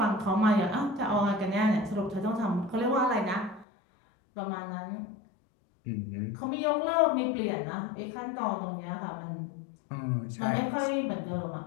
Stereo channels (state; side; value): drops out; right; at 3.7 s